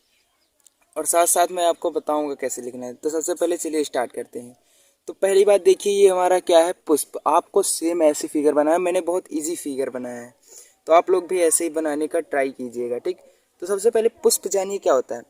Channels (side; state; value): both; identical; correlation 1.00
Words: और साथ साथ मैं आपको बताऊंगा कैसे लिखना है। तो सबसे पहले चलिए स्टार्ट करते हैं। तो पहली बात देखिए, ये हमारा क्या है, पुष्प। आपको सेम ऐसे फिगर बनाया है, मैंने बहुत इजी फिगर बनाया है, तो आप लोग भी ऐसे ही बनाने का ट्राई कीजिएगा, ठीक। तो सबसे पहले पुष्प जानिए क्या होता है।